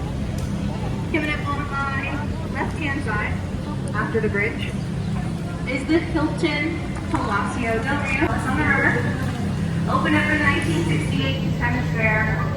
Coming up on my left-hand side, after the bridge, is the Hilton Palacio Del Rio. It's on the river. Opened up in 1968 Hemisphere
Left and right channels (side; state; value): both; identical; correlation 1.00